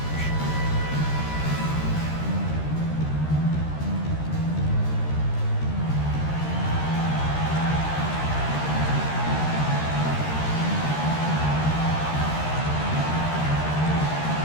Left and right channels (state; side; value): late; right; 13 ms